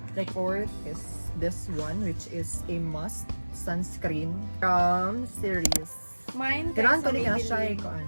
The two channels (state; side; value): inverted; both; correlation -1.00